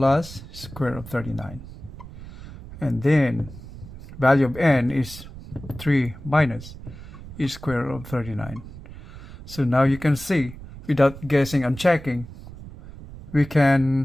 square root of 39. And then value of n is 3 minus is square root of 39. So now you can see, without guessing and checking, we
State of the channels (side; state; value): right; noise; rumble, 15 dB below the sound